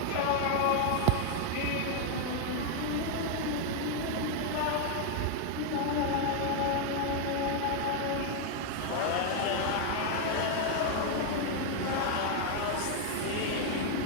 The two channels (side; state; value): both; different; correlation 0.00